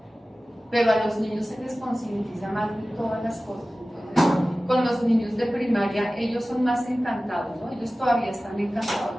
pero a los niños se les concientiza más de todas las cosas. Con los niños de primaria, ellos son más encantados, ¿no? Ellos todavía están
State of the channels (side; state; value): both; normal; correlation 0.96